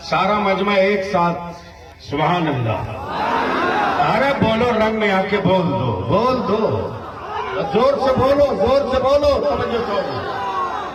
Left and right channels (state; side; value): identical; both; correlation 1.00